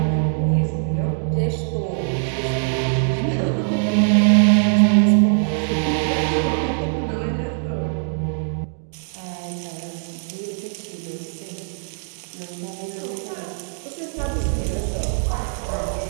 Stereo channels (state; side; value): silent; left; digital silence